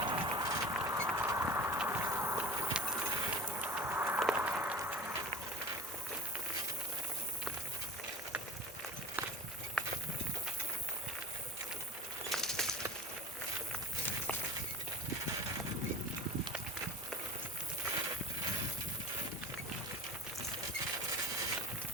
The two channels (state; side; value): normal; both; correlation 0.38